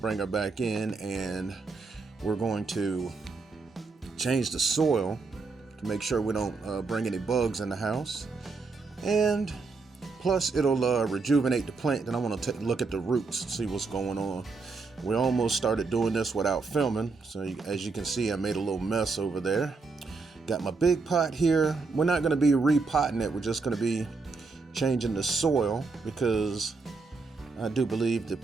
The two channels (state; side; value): quieter; left; 4.2 dB